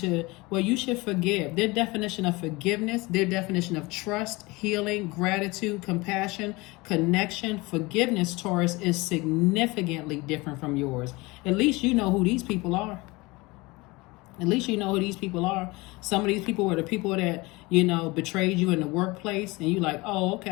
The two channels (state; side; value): quieter; right; 23.4 dB